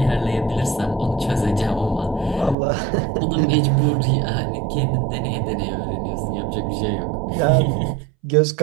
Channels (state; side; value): drops out; left; at 2.6 s